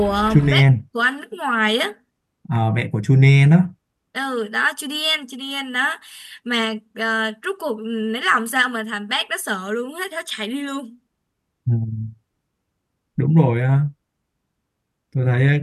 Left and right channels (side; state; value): both; identical; correlation 1.00